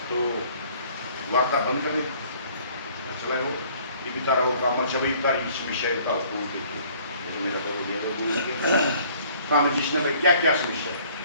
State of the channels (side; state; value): both; inverted; correlation -0.56